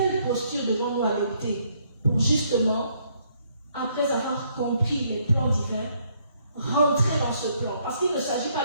posture devons-nous adopter pour justement, après avoir compris les plans divins, rentrer dans ce plan? Parce qu'il ne s'agit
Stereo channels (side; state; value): both; inverted; correlation -0.69